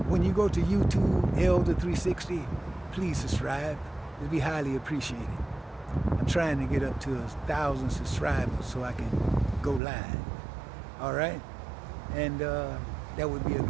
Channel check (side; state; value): left; drops out; at 9.8 s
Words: when you go to YouTube, Elder 360, please subscribe. It'll be highly appreciated. I'm trying to get up to 1,000 subscribers so I can go live. All right? And that would be a